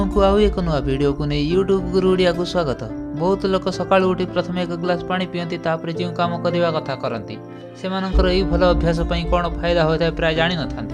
को आउ एक नुआ वीडियो को नहीं यूट्यूब गुरु ओडिया को स्वागत। बहुत लोक सकाळु उठी प्रथम एक ग्लास पानी पियंती, तापर जो काम करवा कथा करती से यही भल अभ्यास कौन फायदा होता है प्राय जानी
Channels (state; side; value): identical; both; correlation 1.00